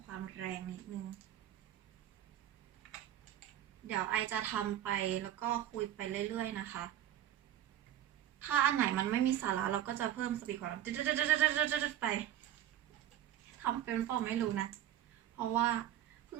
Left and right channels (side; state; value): left; quieter; 11.8 dB